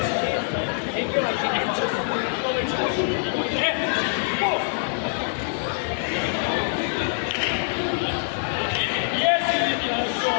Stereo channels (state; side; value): silent; right; 62 dB below the other